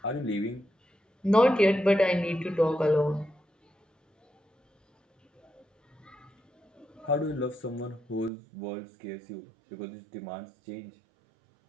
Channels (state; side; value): drops out; left; at 8.3 s